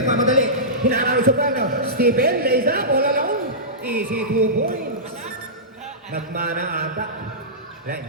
Hinarami sa plano. Stephen, lays up, all alone. Easy 2 points. Nagmana ata. Wala,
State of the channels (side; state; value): both; normal; correlation -0.18